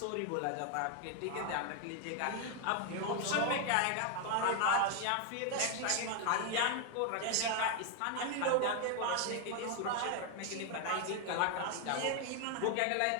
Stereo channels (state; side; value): different; both; correlation 0.00